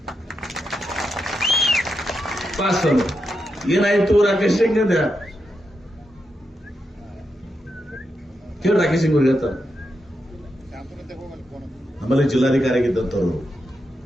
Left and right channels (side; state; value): both; normal; correlation 0.86